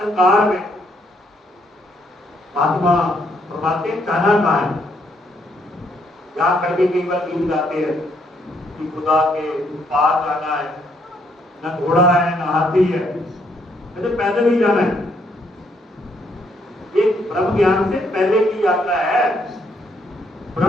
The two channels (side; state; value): both; normal; correlation 0.72